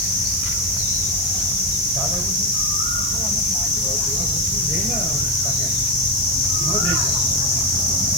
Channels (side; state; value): right; noise; hiss, 8 dB below the sound